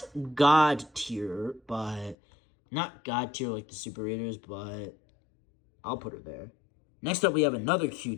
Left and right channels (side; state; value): right; drops out; at 2.1 s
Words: God tier, but... Not God tier like the super readers, but I'll put her there. Next up, we have another